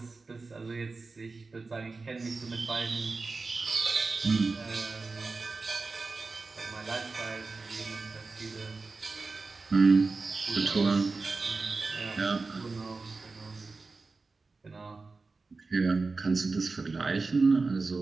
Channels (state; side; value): quieter; left; 3.9 dB